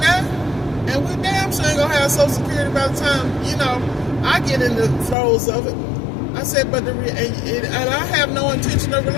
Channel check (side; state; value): right; drops out; at 5.2 s